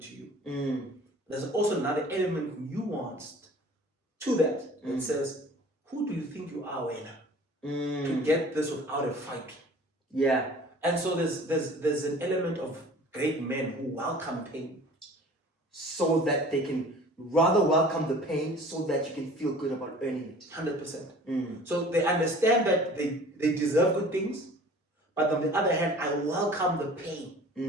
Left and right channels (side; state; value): both; normal; correlation 0.47